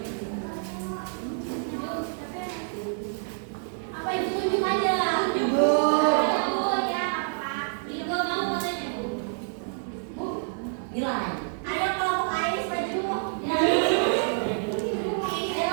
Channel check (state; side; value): silent; left; digital silence